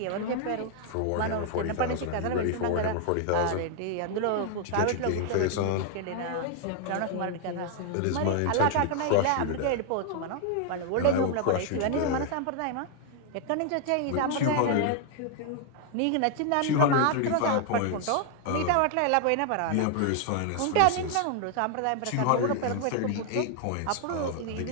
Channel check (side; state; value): both; different; correlation 0.00